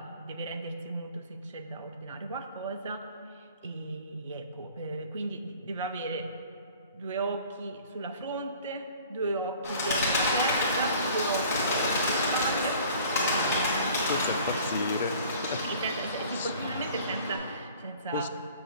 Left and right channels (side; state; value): both; inverted; correlation -0.49